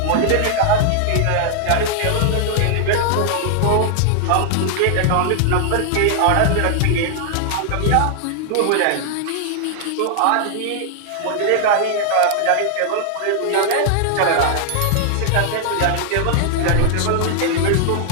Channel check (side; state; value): both; different; correlation 0.00